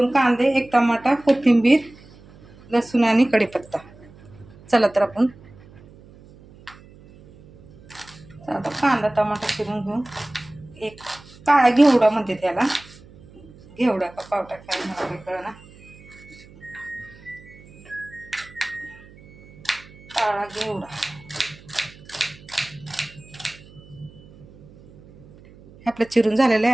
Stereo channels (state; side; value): noise; right; hum, 23 dB below the sound